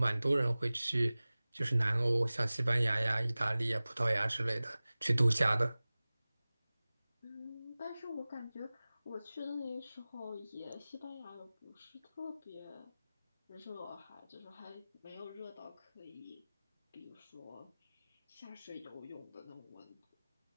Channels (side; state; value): both; inverted; correlation -0.98